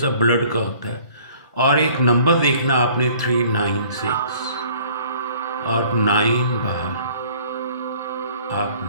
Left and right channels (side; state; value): both; inverted; correlation -0.54